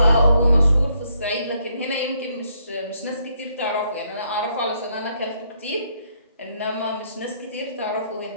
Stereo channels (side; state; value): both; inverted; correlation -0.72